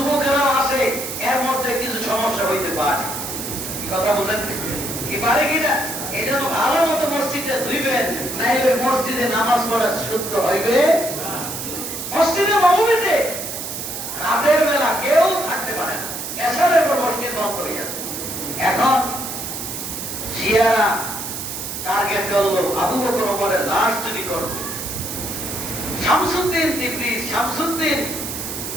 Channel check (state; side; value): noise; right; hiss, 6 dB below the sound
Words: আসে, এর মধ্যে কিছু সমস্যা হইতে পারে। কি কথা বলেন? কি পারে কিনা? এই জন্য ভালো মতো মসজিদে ধুইবেন, নাইলে মসজিদে নামাজ পড়া শুদ্ধ হইবে। মসজিদে নববীতে রাতের বেলা কেউ থাকতে পারে না, এশারের পর মসজিদ বন্ধ হয়ে যাবে। এখন শিয়ারা টার্গেট করলো আবু বকর ওমরের লাশ চুরি করবে। শামসুদ্দিন তিবরিজ, শামসুদ্দিন